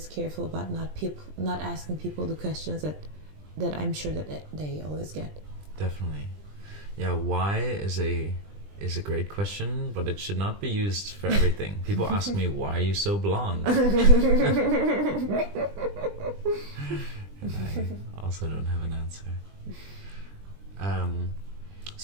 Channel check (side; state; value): left; late; 20 ms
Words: careful about not asking people the questions that I'm sure that they always get. Definitely. Yeah, why is a great question, but it should not be used for everything. People ask me, why are you so blonde? And I also don't have an answer.